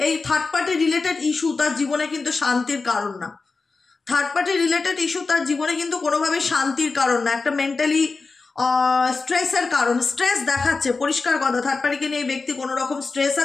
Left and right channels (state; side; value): quieter; right; 4.1 dB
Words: এই থার্ড পার্টি রিলেটেড ইস্যু তার জীবনে কিন্তু শান্তির কারণ না। থার্ড পার্টি রিলেটেড ইস্যু তার জীবনে কিন্তু কোনোভাবেই শান্তির কারণ না, একটা মেন্টালি স্ট্রেসের কারণ। স্ট্রেস দেখাচ্ছে, পরিষ্কার কথা, থার্ড পার্টিকে নিয়ে এই ব্যক্তি কোনো রকম স্ট্রেস